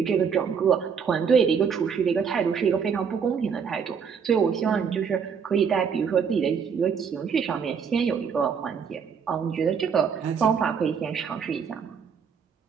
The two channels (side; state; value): left; quieter; 6.6 dB